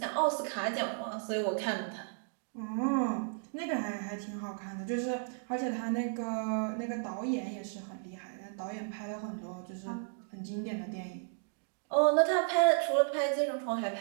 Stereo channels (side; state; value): left; silent; digital silence